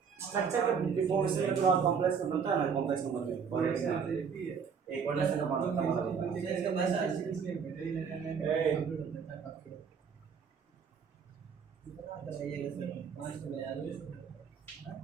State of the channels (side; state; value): left; quieter; 6.4 dB